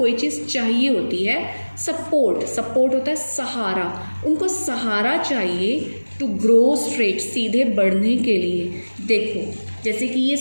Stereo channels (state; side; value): inverted; both; correlation -1.00